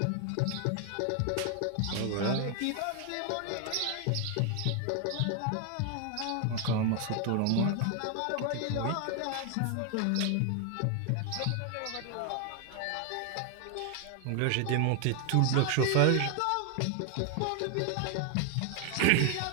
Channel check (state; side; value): different; both; correlation 0.01